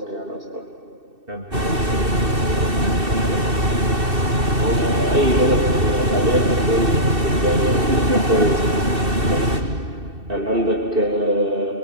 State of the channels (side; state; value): left; late; 2.6 ms